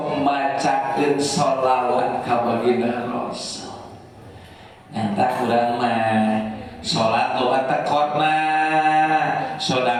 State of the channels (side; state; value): both; identical; correlation 1.00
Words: macakeun sholawat ka baginda Rasul. Ngantah urang mah salat loba tekorna